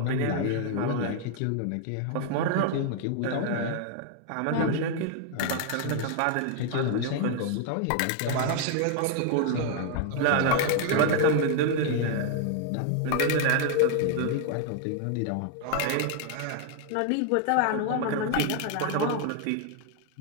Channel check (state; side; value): different; both; correlation 0.00